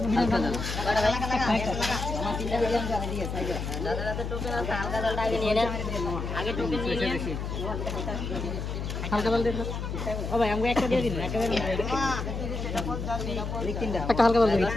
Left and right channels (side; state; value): left; noise; hum, 4 dB below the sound